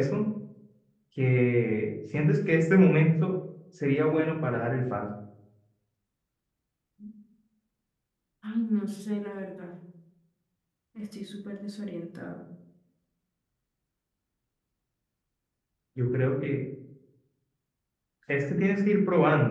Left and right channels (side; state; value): both; identical; correlation 1.00